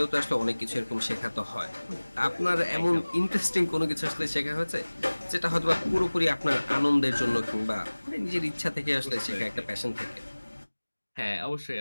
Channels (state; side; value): inverted; both; correlation -1.00